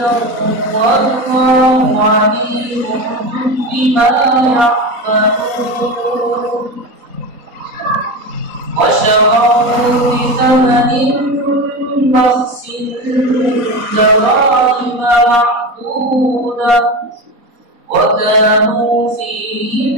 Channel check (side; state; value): left; late; 3.9 ms